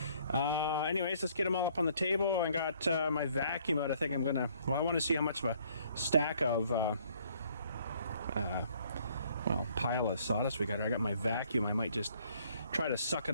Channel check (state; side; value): inverted; both; correlation -0.63